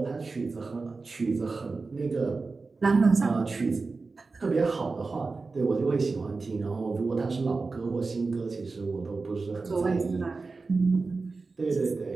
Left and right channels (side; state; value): left; quieter; 4.0 dB